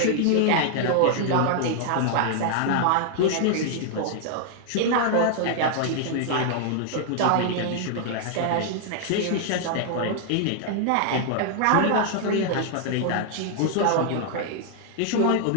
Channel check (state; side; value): different; both; correlation 0.00